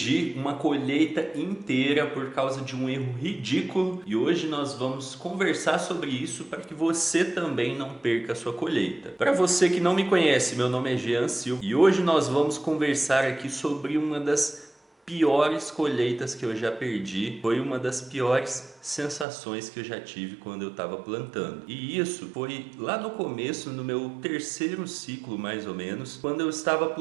uma colheita inteira por causa de um erro ridículo e hoje nós vamos conversar sobre isso para que você também não perca a sua colheita. Para você que não me conhece, meu nome é Jean Silva e hoje nós vamos conversar aqui sobre uma das piores colheitas que eu já perdi. Foi uma das piores sensações que eu já tive quando eu estava plantando. E isso foi lá no começo, no meu terceiro ciclo mais ou menos, quando eu estava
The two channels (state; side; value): drops out; left; at 19.2 s